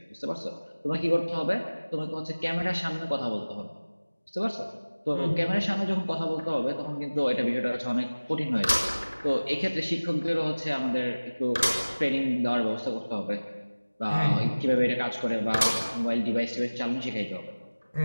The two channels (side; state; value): both; inverted; correlation -1.00